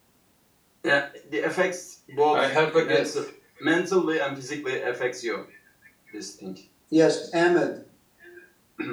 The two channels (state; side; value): identical; both; correlation 1.00